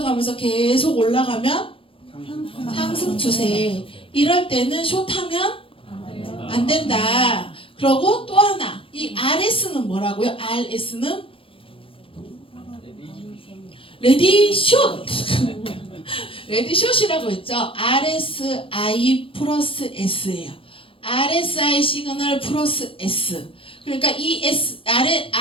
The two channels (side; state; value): right; late; 0.26 ms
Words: 계속 올라가면 상승 추세. 이럴 때는 숏하면 안 된다. 그리고 또 하나, 이 RS는 뭐라고요? RS는 레디 숏. 레디 숏이라고 했죠. RSI 플러스 S예요. RSI 시그널 플러스 S. 그러니까 이